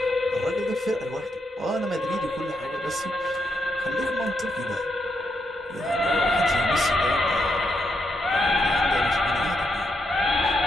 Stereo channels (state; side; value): normal; both; correlation 0.81